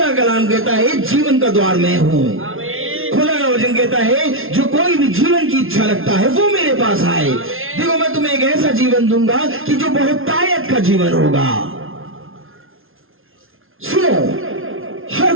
का कलाम कहता है जीवन का द्वार मैं हूं। आमीन। खुदा का वचन कहता है जो कोई भी जीवन की इच्छा रखता है वो मेरे पास आए। देखो मैं तुम्हें एक ऐसा जीवन दूंगा कि जो बहुतायत का जीवन होगा। सुनो, हर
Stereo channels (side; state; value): left; late; 0.60 ms